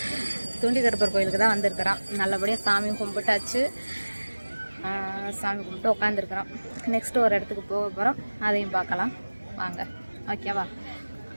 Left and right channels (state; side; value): inverted; both; correlation -1.00